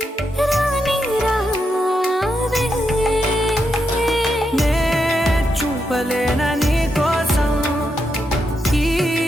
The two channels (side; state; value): both; normal; correlation 0.83